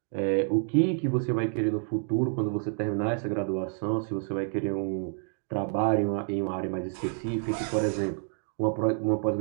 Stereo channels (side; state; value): left; silent; 59 dB below the other